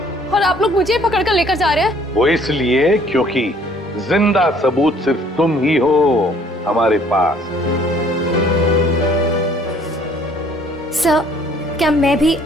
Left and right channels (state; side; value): normal; both; correlation 0.58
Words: और आप लोग मुझे पकड़ कर लेकर जा रहे हैं। वो इसलिए क्योंकि जिंदा सबूत सिर्फ तुम ही हो हमारे पास। सर, क्या मैं भी